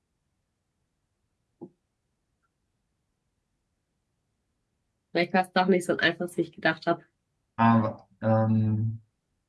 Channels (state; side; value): identical; both; correlation 1.00